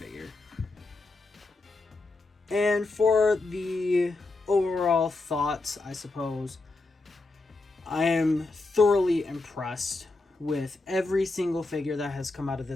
And for the overall thoughts, I suppose, I am thoroughly impressed with every single figure that has come out of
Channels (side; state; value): right; quieter; 3.3 dB